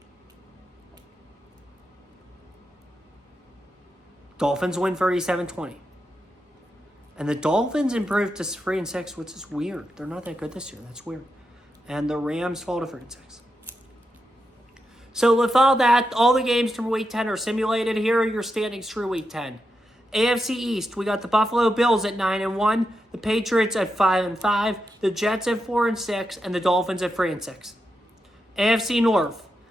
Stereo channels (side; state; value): both; normal; correlation 0.86